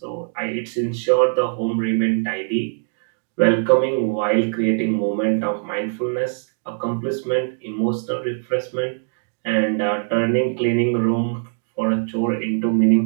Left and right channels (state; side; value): silent; left; digital silence